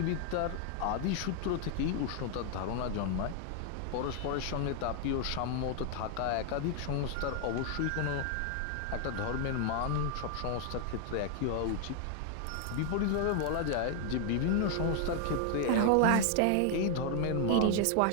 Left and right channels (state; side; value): different; both; correlation 0.00